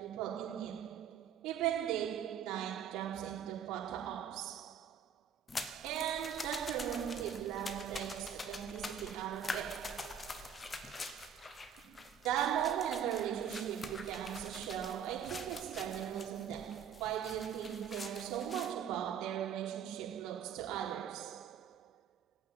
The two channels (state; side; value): quieter; left; 7.8 dB